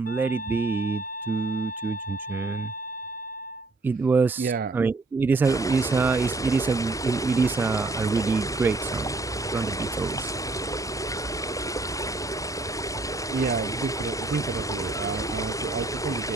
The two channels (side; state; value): left; quieter; 3.4 dB